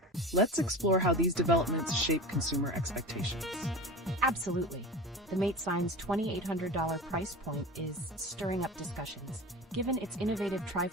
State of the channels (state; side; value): normal; both; correlation 0.32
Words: Let's explore how these developments shape consumer expectations. Absolutely. The Mate 9's $2,800 price point is stirring up discussions. Given its innovative